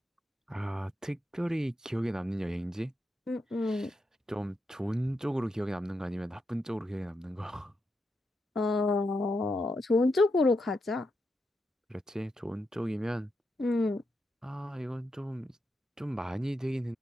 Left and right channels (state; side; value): normal; both; correlation 0.84